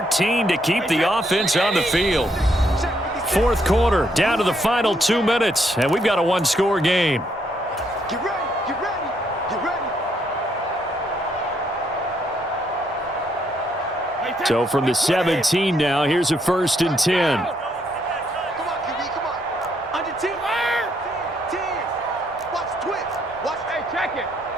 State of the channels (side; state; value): both; normal; correlation 0.73